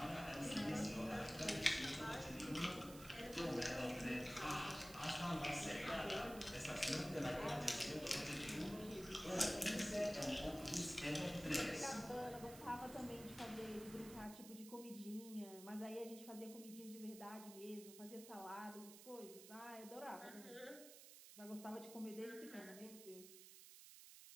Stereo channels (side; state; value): right; noise; hiss, 15 dB below the sound